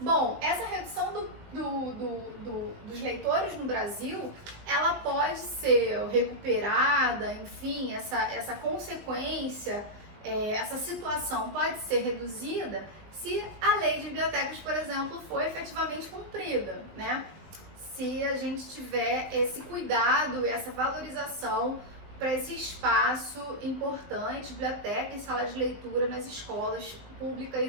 essa redução dos leitores no Brasil, ela pode ser recuperada, enfim, essa consequência, essa situação pode ser reduzida se a lei de bibliotecas, por exemplo, for efetivamente cumprida, né? Se a gente tiver esse cuidado e essa valorização para esse espaço importante, biblioteca e sala de leitura nas escolas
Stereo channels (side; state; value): left; late; 20 ms